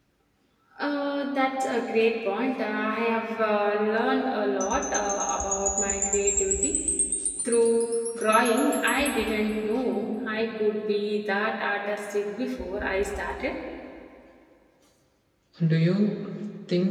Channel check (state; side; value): identical; both; correlation 1.00